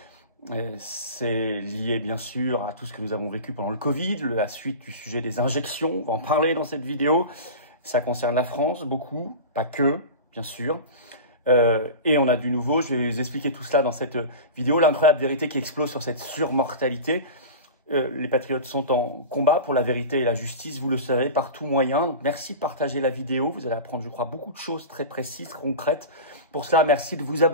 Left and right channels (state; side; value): inverted; both; correlation -0.31